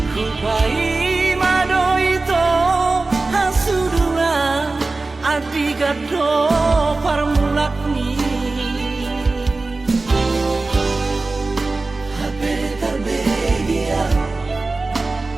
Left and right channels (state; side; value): quieter; left; 3.5 dB